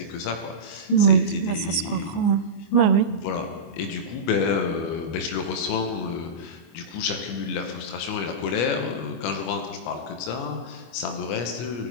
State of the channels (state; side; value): late; right; 24 ms